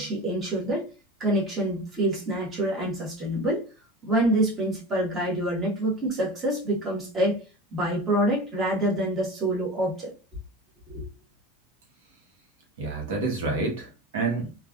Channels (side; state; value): both; normal; correlation 0.32